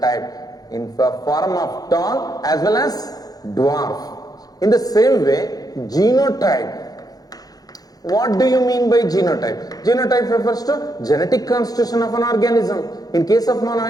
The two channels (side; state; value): right; late; 0.18 ms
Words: in the form of tall as well as dwarf. In the same way, genotype. What do you mean by genotype? Genotype refers to genetic constitution of an organism. In case of